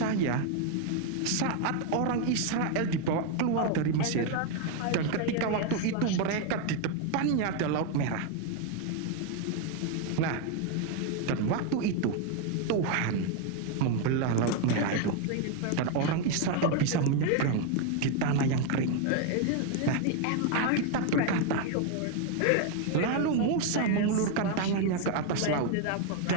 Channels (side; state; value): both; different; correlation 0.01